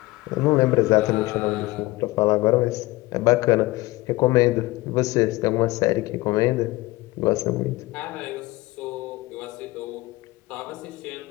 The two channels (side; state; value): right; quieter; 20.3 dB